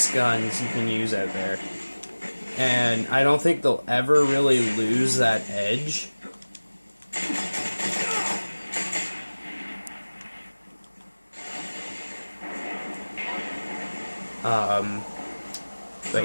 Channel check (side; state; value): both; inverted; correlation -1.00